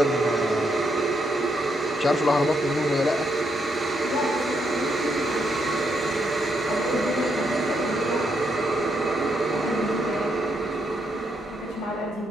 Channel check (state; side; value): normal; both; correlation 0.77